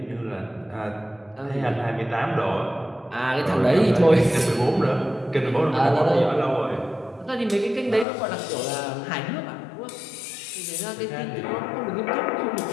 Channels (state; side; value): drops out; right; at 8.1 s